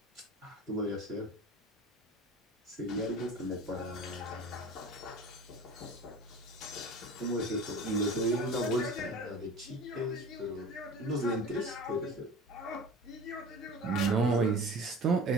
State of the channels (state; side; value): normal; both; correlation 0.38